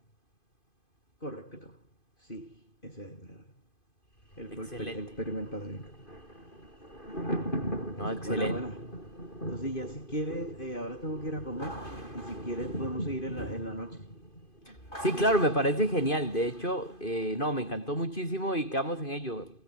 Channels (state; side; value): late; right; 2.5 ms